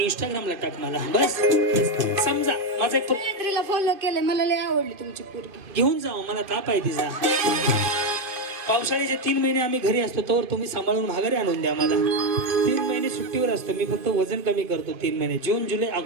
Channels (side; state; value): left; late; 2.4 ms